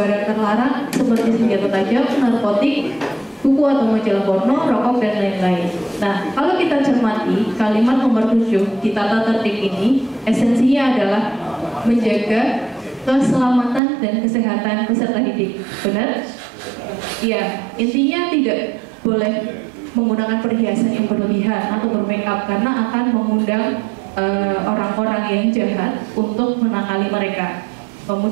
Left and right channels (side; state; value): left; drops out; at 13.8 s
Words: terlarang seperti senjata tajam, narkotik, buku atau majalah porno, rokok, dan lain-lain. Nah, kalau kita cermati kalimat nomor 7 di tata tertib ini, esensinya adalah menjaga keselamatan dan kesehatan peserta didik. Benar? Iya, intinya tidak boleh menggunakan perhiasan yang berlebihan atau bermake up karena akan mengundang orang-orang yang jahat untuk menakali mereka.